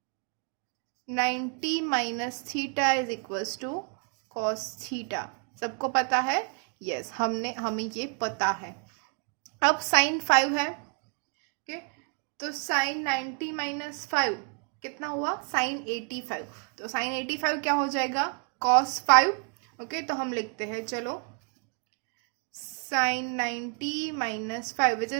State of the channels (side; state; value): left; quieter; 39.0 dB